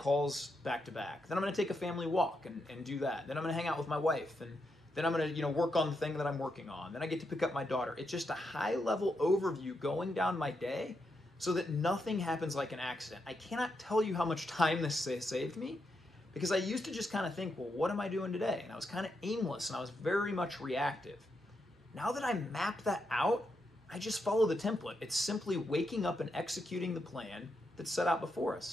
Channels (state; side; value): normal; both; correlation 0.83